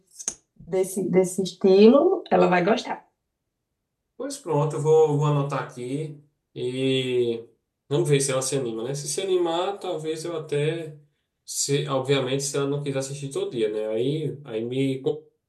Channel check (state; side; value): identical; both; correlation 1.00